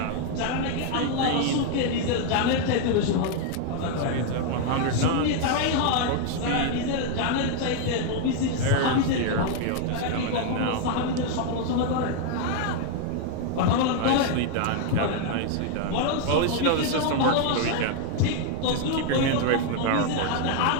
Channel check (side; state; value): both; different; correlation 0.00